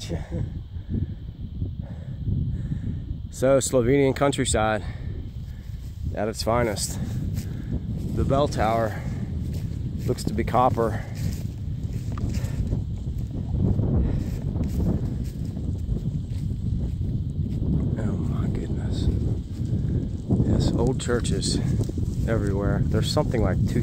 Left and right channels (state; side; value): identical; both; correlation 1.00